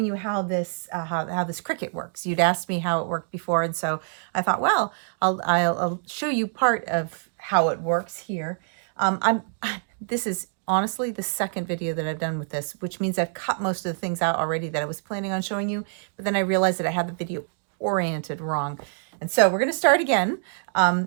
you how this Cricut works. You'd asked me how it worked before, and so I thought, well, I'll show you part of how it works here. This is honestly the second video that I've done with this, which means I've cut most of the things out already that I was planning on showing you, but then I realized that I had the video oriented wrong. And so we're going to start again.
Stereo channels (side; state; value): left; silent; digital silence